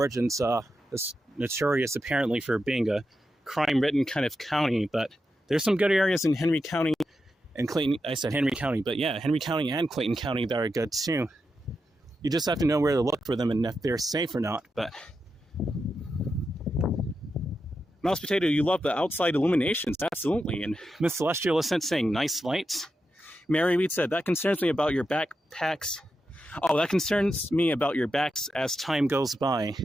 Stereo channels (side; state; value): both; normal; correlation 0.88